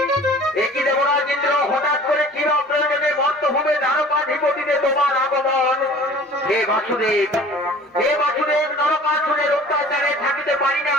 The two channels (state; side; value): normal; both; correlation 0.47